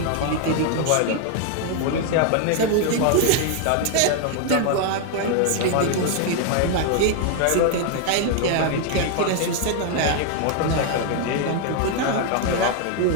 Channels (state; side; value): different; both; correlation 0.00